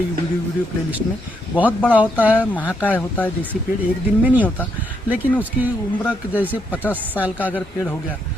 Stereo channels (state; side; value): normal; both; correlation 0.77